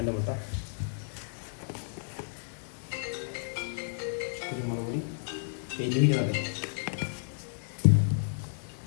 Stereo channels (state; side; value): silent; right; digital silence